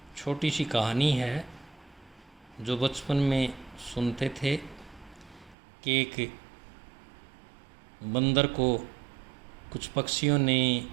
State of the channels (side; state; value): left; drops out; at 5.6 s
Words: छोटी सी कहानी है जो बचपन में सुनते थे कि एक बंदर को कुछ पक्षियों ने